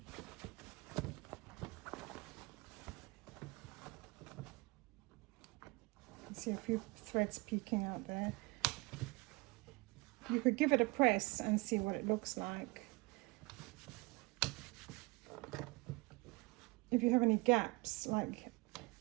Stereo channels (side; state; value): left; quieter; 25.7 dB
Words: See a few threads peeking out there. You could give it a press and see what it looks like. If you have any gaps, like,